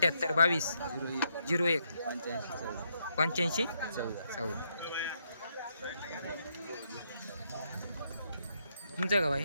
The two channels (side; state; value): both; inverted; correlation -0.77